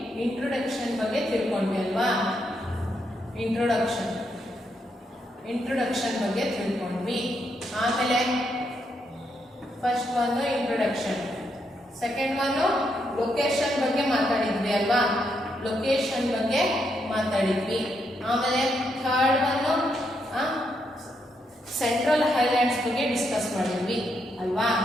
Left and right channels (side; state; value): both; normal; correlation 0.79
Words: ಇಂಟ್ರೊಡಕ್ಷನ್ ಬಗ್ಗೆ ತಿಳ್ಕೊಂಡ್ವಿ ಅಲ್ವಾ. ಇಂಟ್ರೊಡಕ್ಷನ್ ಬಗ್ಗೆ ತಿಳ್ಕೊಂಡ್ವಿ. ಆಮೇಲೆ ಫಸ್ಟ್ ಒಂದು ಇಂಟ್ರೊಡಕ್ಷನ್, ಸೆಕೆಂಡ್ ಒಂದು ಲೊಕೇಶನ್ ಬಗ್ಗೆ ಮಾತಾಡಿದ್ವಿ ಅಲ್ವಾ, ಲೊಕೇಶನ್ ಬಗ್ಗೆ ಮಾತಾಡಿದ್ವಿ. ಆಮೇಲೆ ಥರ್ಡ್ ಒಂದು ಸೆಂಟ್ರಲ್ ಹೈಲ್ಯಾಂಡ್ಸ್ ಬಗ್ಗೆ ಡಿಸ್ಕಸ್ ಮಾಡಿದ್ವಿ ಅಲ್ವಾ.